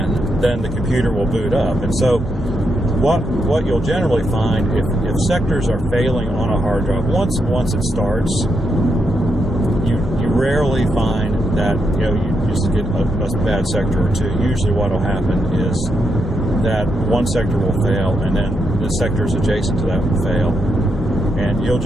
then the computer will boot up. And so what you'll generally find, if sectors are failing on a hard drive, once it starts, you rarely find that, you just get a bad sector or two. Usually what will happen is that one sector will fail, and then the sectors adjacent to that will fail. And you'll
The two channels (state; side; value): normal; both; correlation 0.81